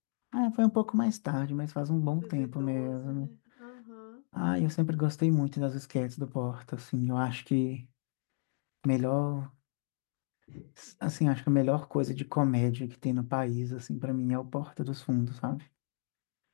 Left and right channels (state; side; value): silent; right; 56 dB below the other